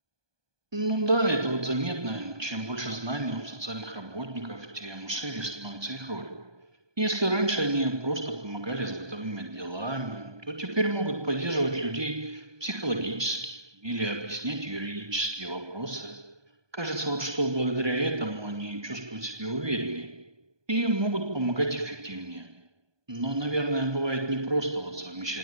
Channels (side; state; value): left; late; 1.2 ms